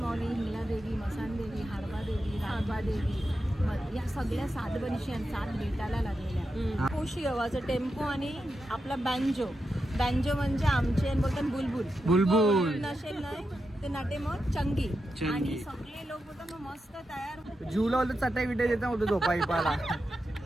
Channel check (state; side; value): normal; both; correlation 0.88